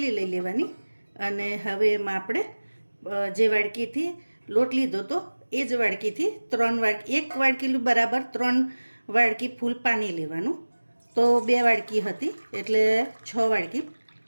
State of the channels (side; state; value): both; inverted; correlation -1.00